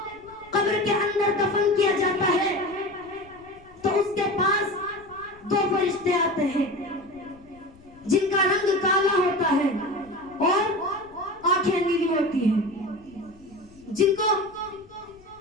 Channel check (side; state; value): left; noise; rumble, 26 dB below the sound